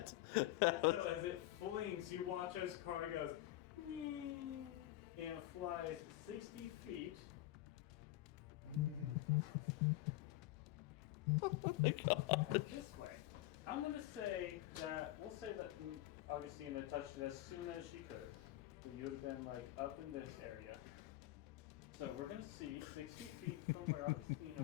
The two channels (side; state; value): right; quieter; 16.2 dB